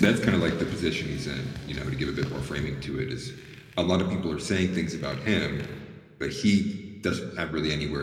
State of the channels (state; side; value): identical; both; correlation 1.00